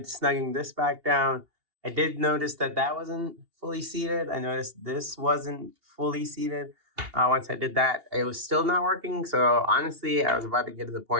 snugging this back down. I did notice that that wasn't fully seated. I noticed this wasn't fully seated. Once I did that, it was still not working. So honestly, I was about to get to the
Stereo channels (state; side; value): late; left; 2.8 ms